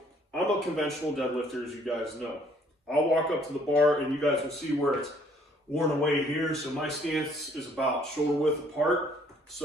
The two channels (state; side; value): normal; both; correlation 0.62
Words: I'm a conventional deadlifter, as you guys know. I'll walk up to the bar and you guys will see where it's worn away here. So my stance is about shoulder width apart.